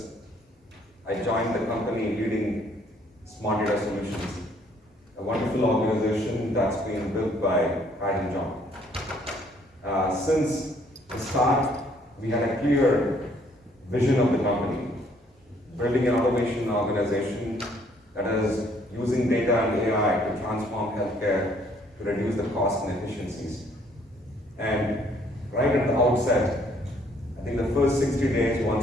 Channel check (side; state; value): both; normal; correlation 0.64